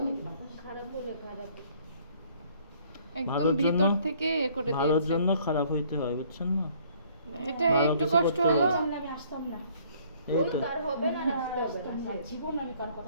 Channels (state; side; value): inverted; both; correlation -0.60